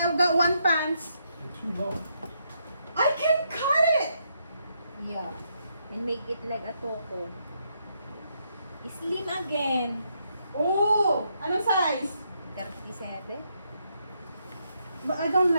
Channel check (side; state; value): both; inverted; correlation -0.77